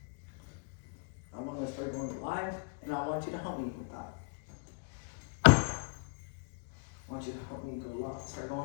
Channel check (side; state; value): right; quieter; 39.1 dB